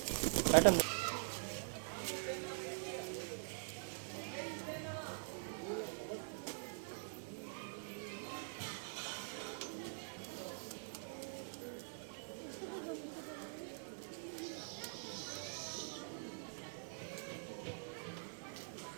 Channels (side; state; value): left; silent; digital silence